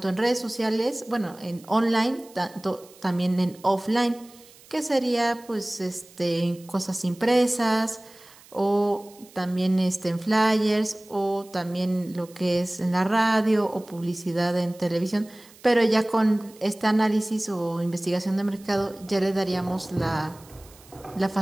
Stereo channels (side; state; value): right; noise; hiss, 24 dB below the sound